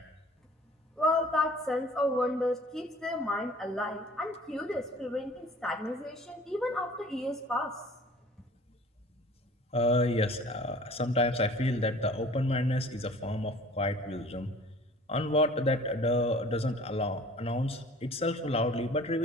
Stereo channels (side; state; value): both; normal; correlation 0.48